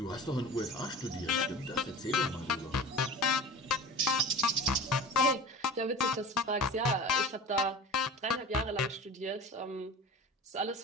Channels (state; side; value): normal; both; correlation 0.38